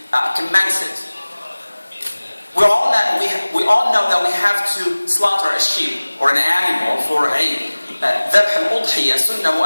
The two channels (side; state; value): both; inverted; correlation -1.00